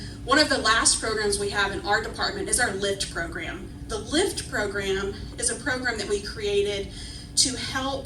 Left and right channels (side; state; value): both; identical; correlation 1.00